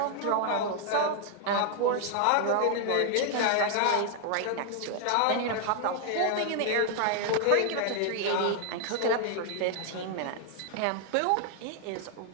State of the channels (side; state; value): both; different; correlation 0.00